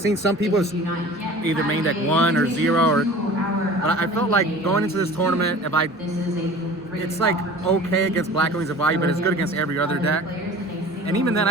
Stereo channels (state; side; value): normal; both; correlation 0.42